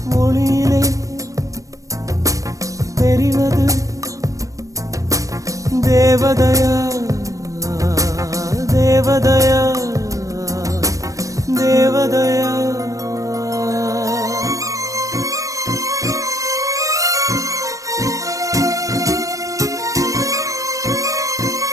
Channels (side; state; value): left; late; 0.16 ms